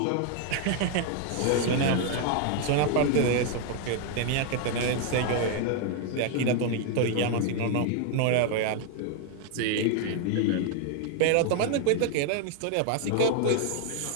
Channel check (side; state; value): both; different; correlation 0.01